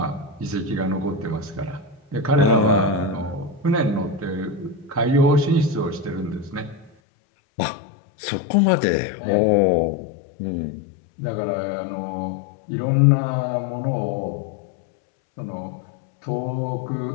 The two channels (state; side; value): drops out; right; at 6.9 s